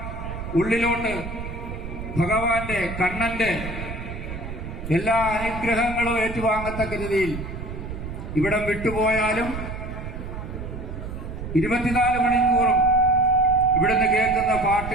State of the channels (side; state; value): right; noise; rumble, 8 dB below the sound